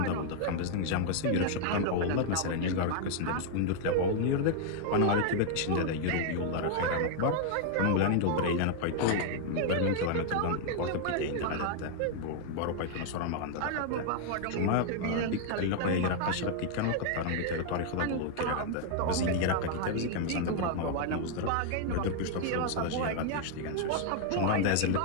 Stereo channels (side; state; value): both; different; correlation 0.00